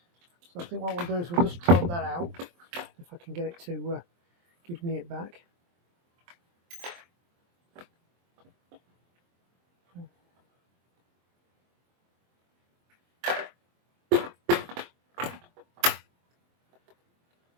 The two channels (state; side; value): late; left; 23 ms